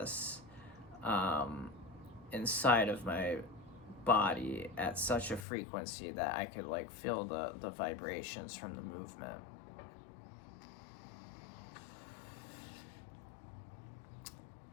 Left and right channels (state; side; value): drops out; right; at 5.5 s